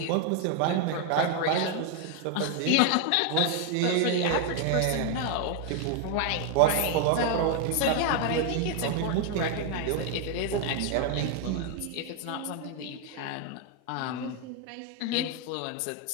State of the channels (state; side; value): different; both; correlation 0.00